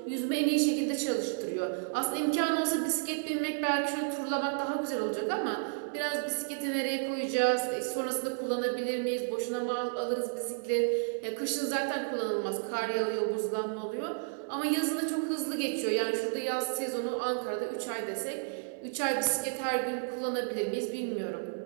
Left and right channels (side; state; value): left; silent; 57 dB below the other